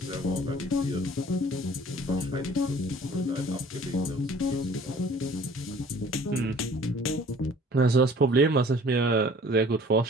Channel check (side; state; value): both; normal; correlation 0.51